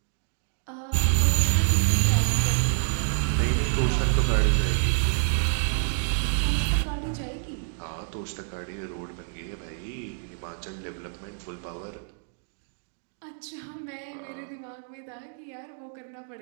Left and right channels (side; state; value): left; silent; digital silence